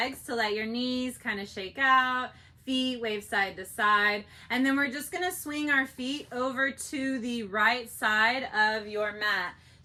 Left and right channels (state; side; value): identical; both; correlation 1.00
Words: to let your knees kind of shake out, feet wave side to side. And then we're just gonna swing our feet over to the right side of your mat.